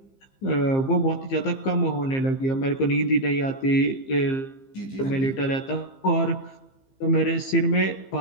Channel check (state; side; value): late; right; 15 ms